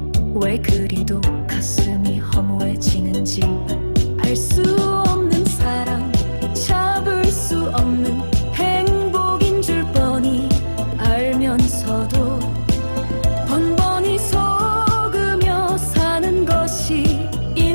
왜 그리도 가슴이 허무해지는지. 알 수 없는 사랑, 잡을 수 없는 행복인 줄 뻔히 알면서도 번번이 속으며 사는 것이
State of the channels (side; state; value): both; inverted; correlation -1.00